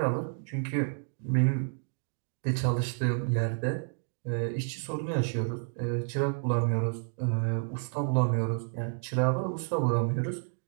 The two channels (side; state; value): left; silent; digital silence